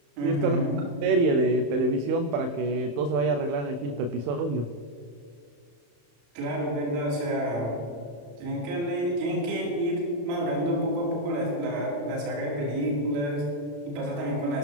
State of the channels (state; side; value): late; left; 34 ms